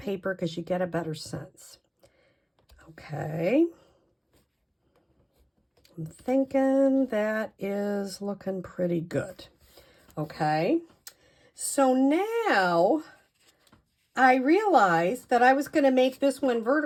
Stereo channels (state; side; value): identical; both; correlation 1.00